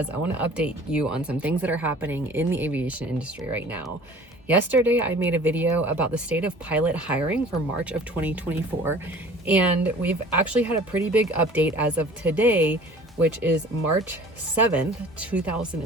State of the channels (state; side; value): normal; both; correlation 0.47